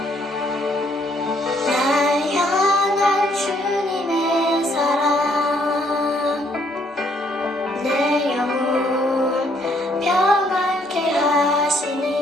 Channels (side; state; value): both; normal; correlation 0.68